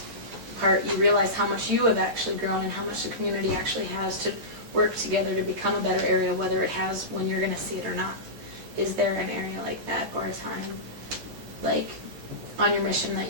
part, you realize how much you have actually grown and how much the community actually has to work together to become a better area, whether it has when you're going to see it or not. Is there an area like that or a time like on your mission that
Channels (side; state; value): left; late; 13 ms